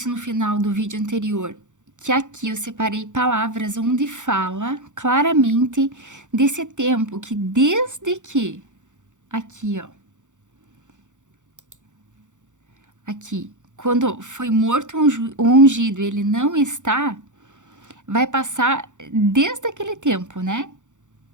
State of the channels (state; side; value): late; left; 0.85 ms